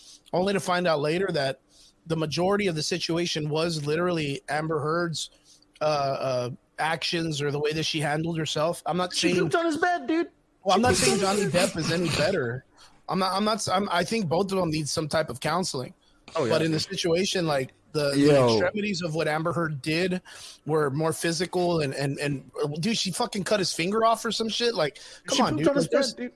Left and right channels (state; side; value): identical; both; correlation 1.00